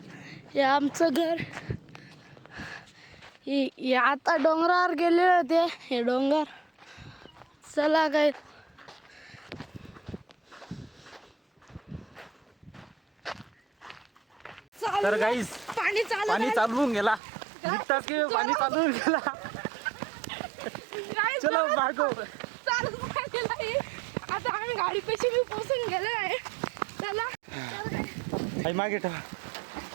हे आमचं घर. हे आता डोंगरावर गेलेले होते. हे डोंगर चला काय तर गाईस पाणी चालवून गेला निघताच की पाणी चालवून गेला चलो भागो. आता आम्ही गाडी पैसे मी पोहोचून गेलो आहे चला. आई मागे ठेवा.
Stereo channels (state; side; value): drops out; left; at 17.2 s